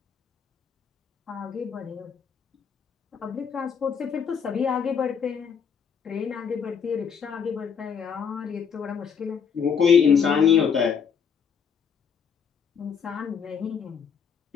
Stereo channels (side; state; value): right; quieter; 6.8 dB